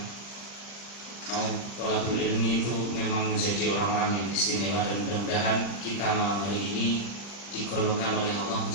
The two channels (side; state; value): right; late; 40 ms